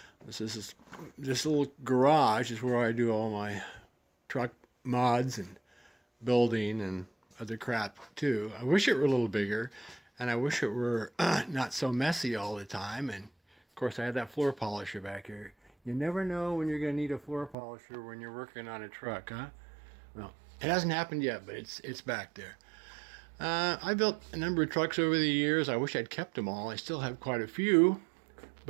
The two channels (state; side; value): drops out; left; at 17.6 s